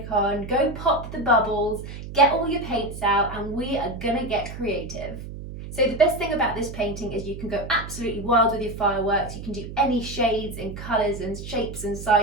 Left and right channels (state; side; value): noise; right; hum, 10 dB below the sound